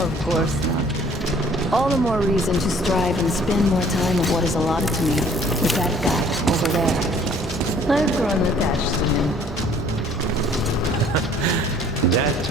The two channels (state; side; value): normal; both; correlation 0.56